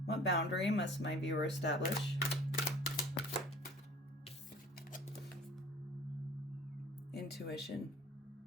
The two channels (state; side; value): normal; both; correlation 0.48